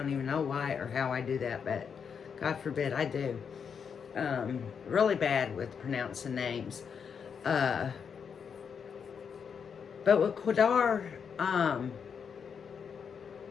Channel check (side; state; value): right; quieter; 6.8 dB